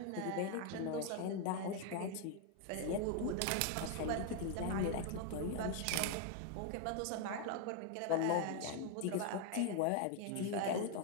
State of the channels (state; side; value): different; both; correlation 0.00